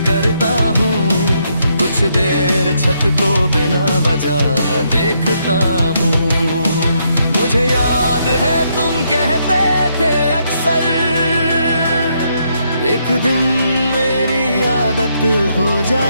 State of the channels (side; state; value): both; inverted; correlation -0.76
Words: करता हूँ, कुछ देर छत को बिना वजह देखता हूँ। मुझे याद है तुम कहते थे अक्सर, एक दिन मेरी आदत हो